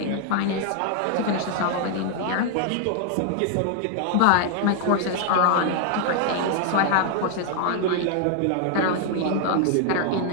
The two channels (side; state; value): both; different; correlation 0.00